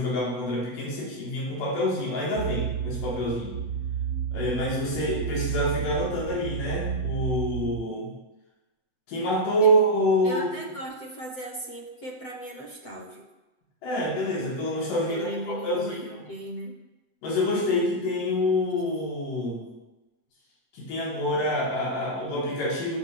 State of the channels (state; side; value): late; right; 7.9 ms